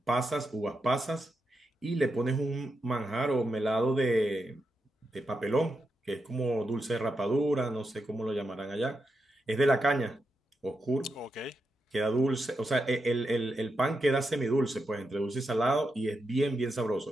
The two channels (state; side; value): normal; both; correlation 0.86